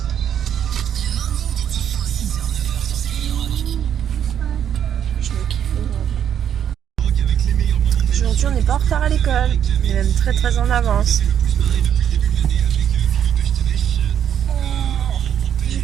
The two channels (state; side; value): quieter; left; 9.2 dB